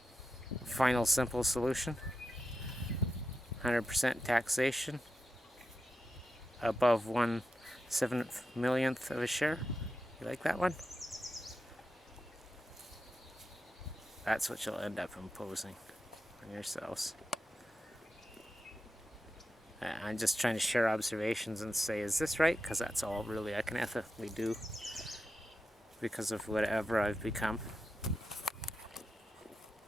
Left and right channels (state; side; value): normal; both; correlation 0.89